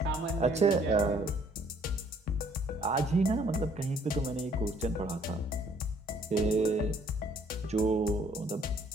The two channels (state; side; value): normal; both; correlation 0.62